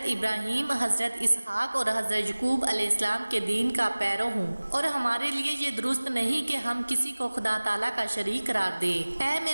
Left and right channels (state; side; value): inverted; both; correlation -1.00